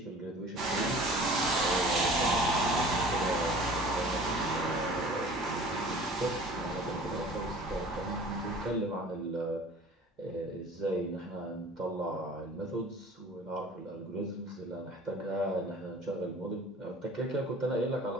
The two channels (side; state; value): both; normal; correlation 0.45